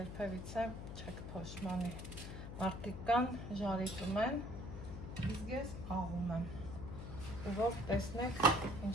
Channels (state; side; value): noise; left; hum, 8 dB below the sound